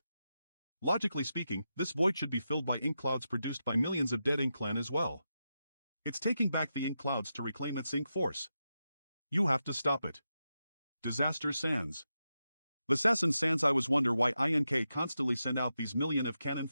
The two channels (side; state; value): both; inverted; correlation -0.88